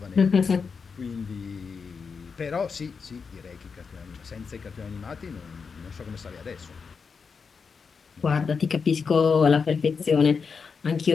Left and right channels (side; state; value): right; quieter; 5.5 dB